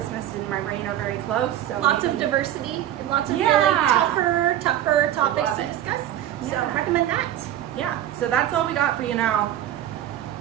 in my brain are very close. So Lots of maybe- diversity and lots of Yeah. really tougher topics love to it. discuss. So Yeah. recommend that. Yeah, so that's all we got for you now.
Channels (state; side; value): quieter; left; 12.0 dB